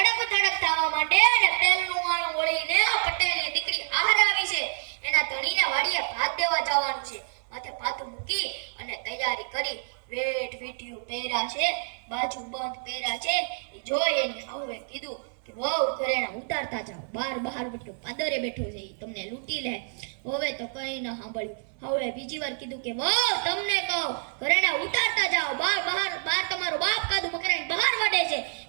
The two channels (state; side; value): silent; left; digital silence